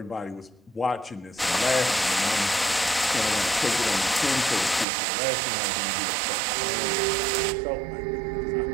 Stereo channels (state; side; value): drops out; left; at 4.9 s